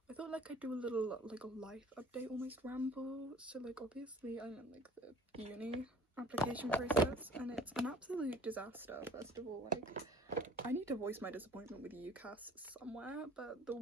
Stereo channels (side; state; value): both; normal; correlation 0.50